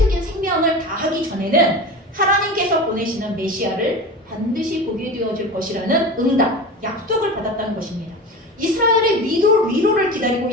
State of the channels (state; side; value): normal; both; correlation 0.30